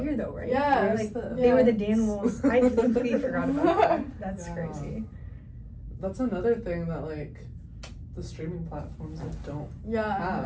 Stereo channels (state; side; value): identical; both; correlation 1.00